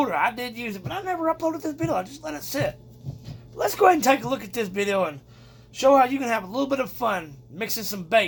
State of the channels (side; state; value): both; identical; correlation 1.00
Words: I did use it, but I never uploaded this video. I just let it sit. But let's go ahead and take a look at this video and show how you can have a little bit of fun mixing some